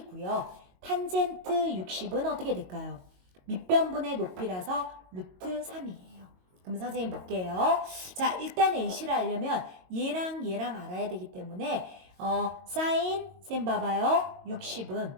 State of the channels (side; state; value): left; late; 22 ms